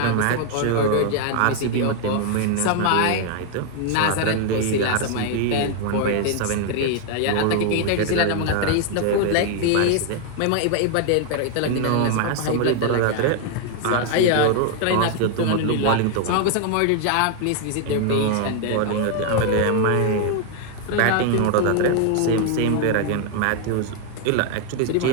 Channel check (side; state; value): both; different; correlation 0.00